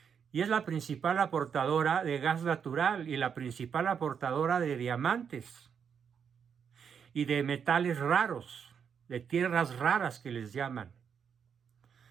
y es la principal aportadora de gas natural y la principal aportadora de diamantes y de metales raros, de tierras raras que les llaman.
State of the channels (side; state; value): left; quieter; 7.2 dB